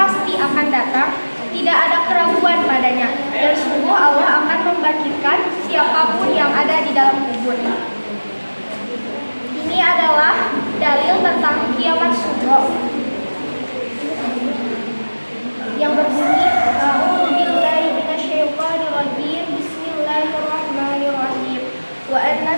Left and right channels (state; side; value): inverted; both; correlation -1.00